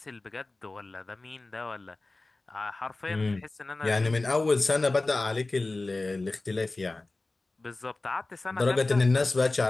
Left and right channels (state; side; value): quieter; right; 3.1 dB